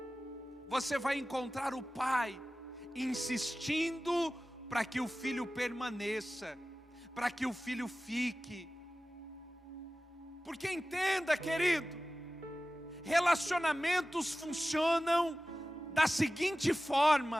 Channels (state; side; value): normal; both; correlation 0.96